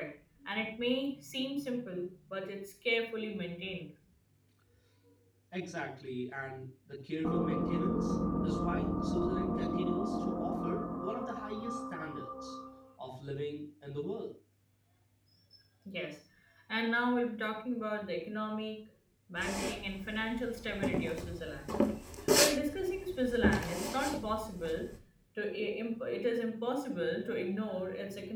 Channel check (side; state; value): both; identical; correlation 1.00